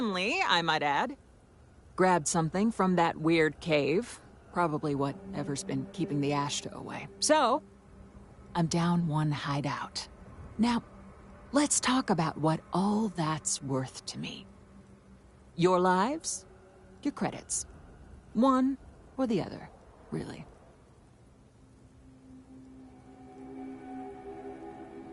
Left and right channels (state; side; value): identical; both; correlation 1.00